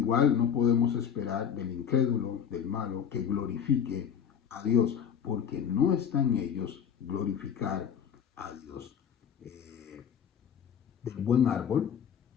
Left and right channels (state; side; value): quieter; right; 8.0 dB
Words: no podemos esperar del incrédulo, del malo, que glorifique a Dios, porque no está en ellos glorificar a Dios. Del buen árbol